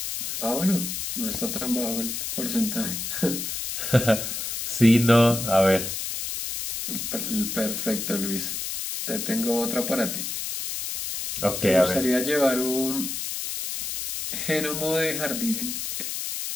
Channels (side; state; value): left; noise; hiss, 4 dB below the sound